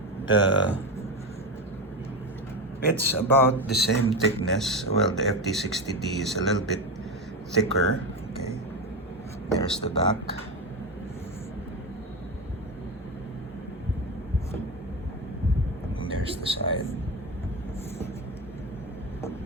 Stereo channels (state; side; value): normal; both; correlation 0.18